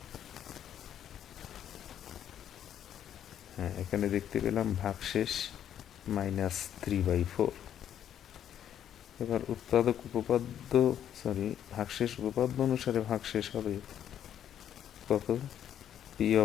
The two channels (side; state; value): right; quieter; 10.1 dB